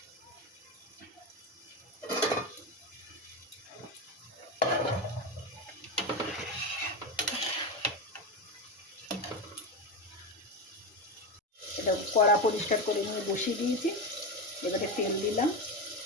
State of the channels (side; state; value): both; normal; correlation 0.17